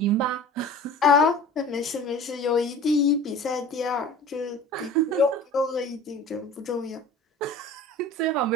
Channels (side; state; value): both; normal; correlation 0.40